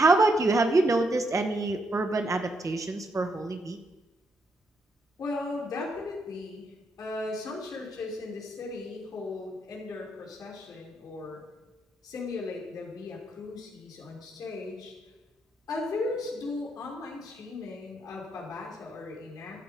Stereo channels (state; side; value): normal; both; correlation 0.78